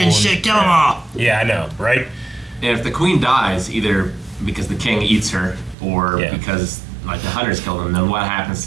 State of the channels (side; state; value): left; drops out; at 5.8 s